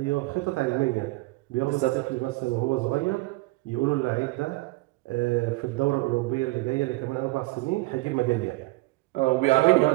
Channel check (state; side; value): quieter; left; 22.2 dB